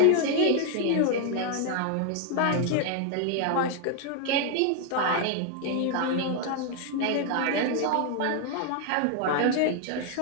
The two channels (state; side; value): different; both; correlation 0.00